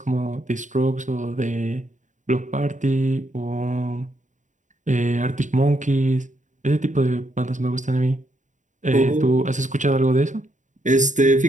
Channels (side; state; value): left; late; 0.36 ms